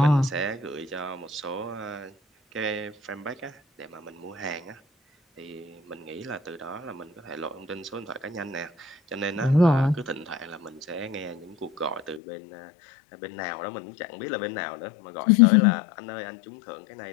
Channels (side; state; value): right; drops out; at 12.2 s